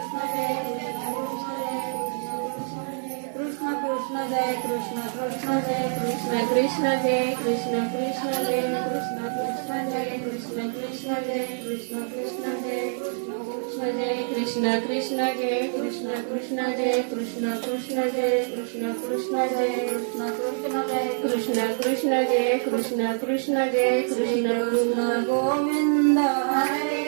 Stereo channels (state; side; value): silent; left; digital silence